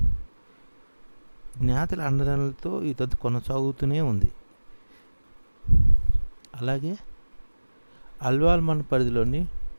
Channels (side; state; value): both; inverted; correlation -1.00